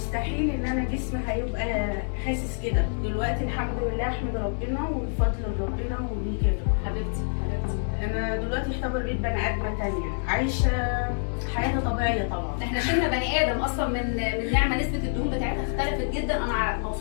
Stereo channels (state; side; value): silent; right; 60 dB below the other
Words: ان انا جسمي هيبقى حاسس كده. دلوقتي الحمد لله احمد ربنا وبفضل ربنا وليه كده. حبيبتي انا دلوقتي يعتبر بقيت بني ادمه تانية عايشه حياه طبيعيه. طبعا احنا شلنا بني ادم اصلا من نعمه. نسبه الدهون بتاعتها اختلفت جدا، انا